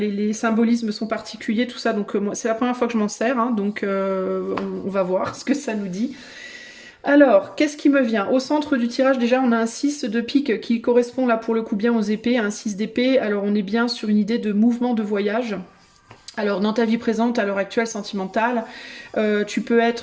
symbolismes sont particuliers, tout ça. Donc c'est la première fois que je m'en sers, hein, donc on va voir ce que ça nous dit. Alors, qu'est-ce qui me vient? Au centre du tirage, déjà, on a un 6 de pique qui correspond là pour le coup bien aux épées, un 6 d'épée. Alors on est bien sur une idée de mouvement de voyage. Alors dans ta vie présente, à l'heure actuelle sentimentale, tu peux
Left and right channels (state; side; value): identical; both; correlation 1.00